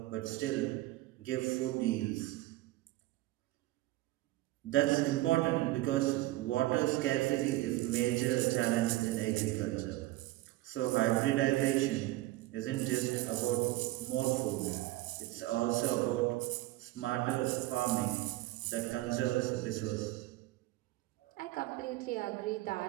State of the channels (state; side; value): quieter; left; 17.8 dB